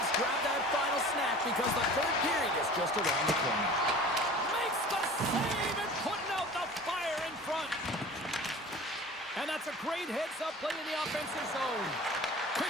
grab that final snack, because the third period is just around the corner. Makes the save and putting out the fire in front. And that's a great heads-up play in the offensive zone.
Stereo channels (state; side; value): normal; both; correlation 0.41